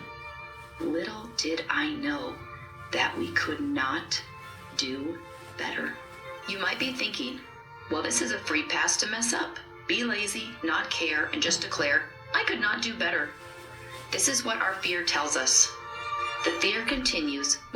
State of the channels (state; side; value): identical; both; correlation 1.00